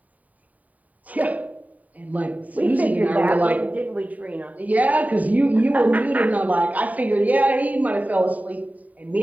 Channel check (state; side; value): late; left; 0.073 ms